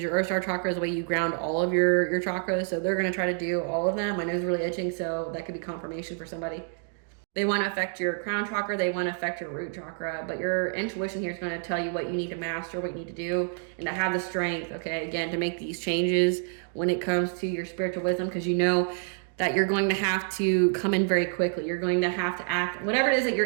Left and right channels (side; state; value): left; silent; 59 dB below the other